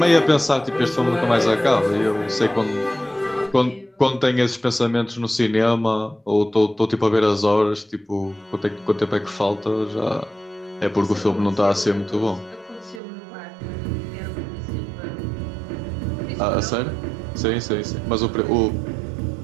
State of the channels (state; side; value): drops out; left; at 13.0 s